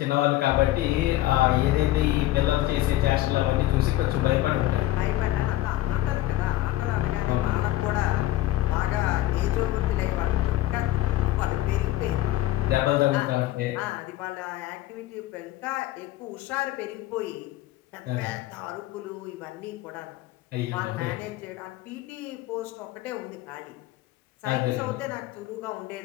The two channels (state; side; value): quieter; right; 15.3 dB